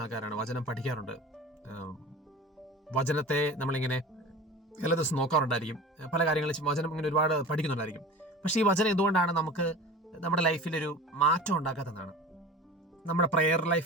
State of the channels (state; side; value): normal; both; correlation 0.36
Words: ആൾക്കാരാണ്, വചനം പഠിക്കാറുണ്ട്. വചനത്തെ നമ്മളിങ്ങനെ എല്ലാ ദിവസം നോക്കാറുണ്ടായിരിക്കും, പല കാര്യങ്ങളും വചനം ഇങ്ങനെ ഒരുപാട് പഠിക്കുന്നുണ്ടായിരിക്കും. പക്ഷേ ഈ വചനം എന്തുകൊണ്ടാണ് നമുക്ക് നമ്മുടെ ലൈഫിലൊരു മാറ്റം ഉണ്ടാക്കാത്തതാണ്? നമ്മുടെ പ്രെയർ